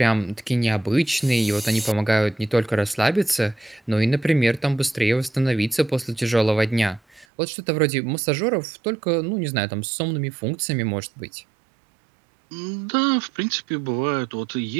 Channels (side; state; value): left; drops out; at 7.2 s